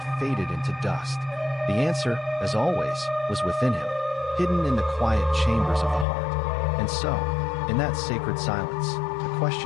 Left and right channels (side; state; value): right; drops out; at 6.1 s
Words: faded into dust. The answer, as always, was within him, hidden in the quiet chambers of the heart. And so, in that sacred silence, the